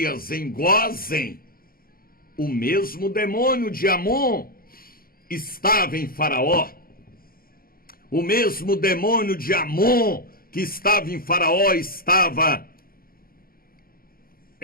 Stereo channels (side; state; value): right; late; 0.43 ms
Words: em Gósen. O mesmo demônio de Amon estava em Faraó. O mesmo demônio de Amon que estava em Faraó estava